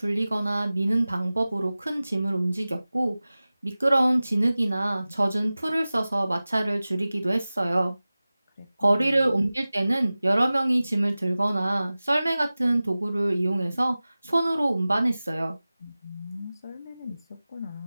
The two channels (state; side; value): inverted; both; correlation -0.98